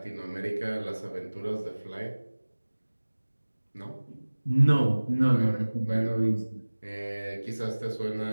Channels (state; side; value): inverted; both; correlation -1.00